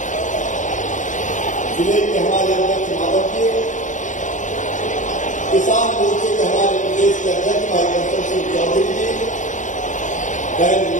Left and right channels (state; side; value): late; right; 0.36 ms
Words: जिले के हमारे अध्यक्ष माधव जी, किसान मोर्चे के हमारे प्रदेश के अध्यक्ष भाई कंसल सिंह चौधरी जी, बहन